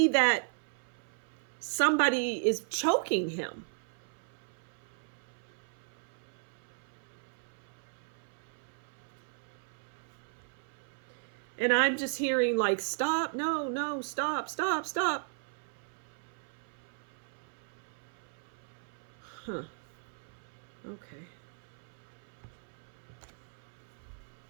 that somebody is choking him. And I'm just hearing like, stop, no, stop. Huh. Okay.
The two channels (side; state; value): left; silent; 54 dB below the other